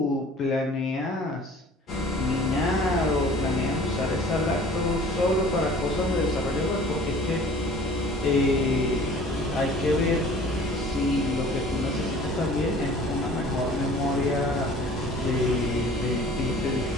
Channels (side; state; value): both; normal; correlation 0.48